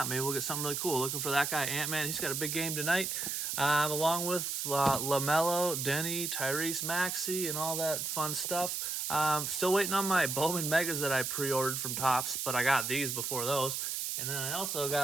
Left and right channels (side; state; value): right; noise; hiss, 2 dB below the sound